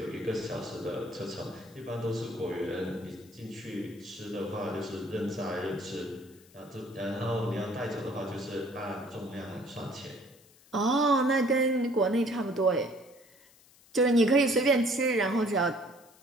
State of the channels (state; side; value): noise; left; hiss, 27 dB below the sound